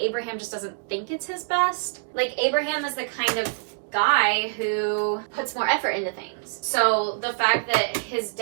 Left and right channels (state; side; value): silent; left; digital silence